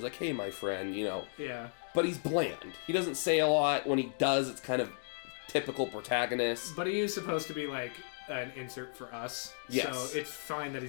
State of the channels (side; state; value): right; silent; digital silence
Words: he's like, hey, my friend, you know. Yeah. But he's bland. He doesn't say a lot. When he does, it's kind of typical protagonist. But he is supposed to be like an insert for us. Yes. So it's fine that